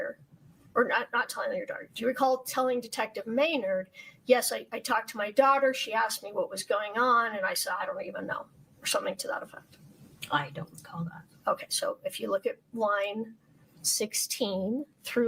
or not telling your daughter, do you recall telling Detective Maynard, yes, I talked to my daughter, she asked me what was going on, and I said, I don't even know, or something to that effect? I don't recall that. Okay, so if you look at line 16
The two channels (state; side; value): identical; both; correlation 1.00